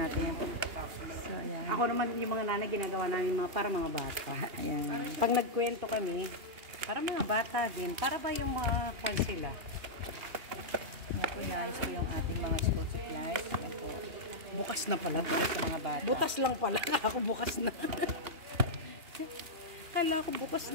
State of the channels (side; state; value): left; late; 2.8 ms